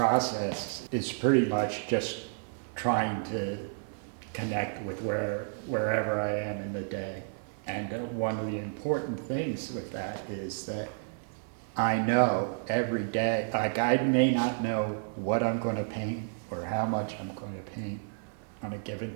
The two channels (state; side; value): silent; left; 57 dB below the other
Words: is pretty much just trying to connect with wherever I am in the day. And one of the important things with that is that I know every day, like I may not know what I'm going to paint or how much I'm going to paint on a given